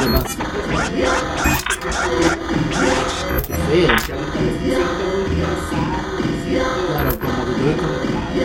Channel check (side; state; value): both; identical; correlation 1.00